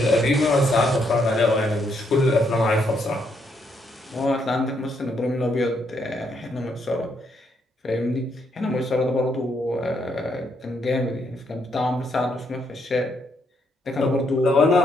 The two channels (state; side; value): normal; both; correlation 0.75